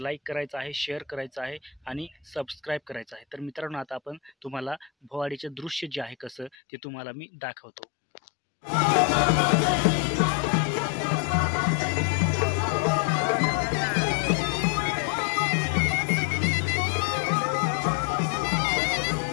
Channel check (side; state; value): right; drops out; at 6.6 s